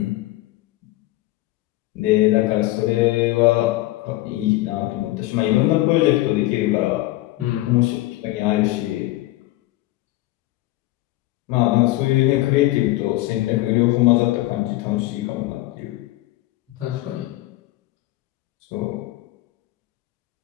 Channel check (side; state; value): right; quieter; 17.6 dB